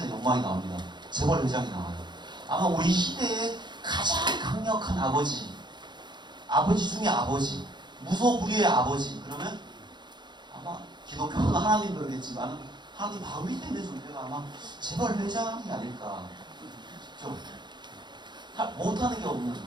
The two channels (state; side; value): late; left; 0.21 ms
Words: 영광이 나옵니다. 재벌 회장이 나와요. 아마 우리 시대의 가장 강력한 아버지 중에 아버지, 무소불위의 아버지. 그러면 아마 기독교는 하나님 그러겠지만 하나님 바로 밑에 있는 존재가 아마 재벌 회장이 아닐까. 좀 못하는 게 없는,